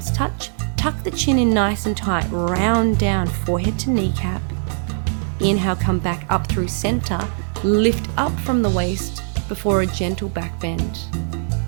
touch. Tuck the chin in nice and tight, round down, forehead to kneecap. Inhale, come back up through center, lift up from the waist before a gentle back bend.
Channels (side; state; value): left; silent; 63 dB below the other